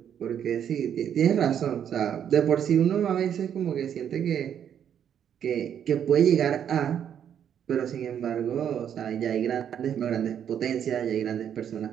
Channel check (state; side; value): quieter; left; 9.0 dB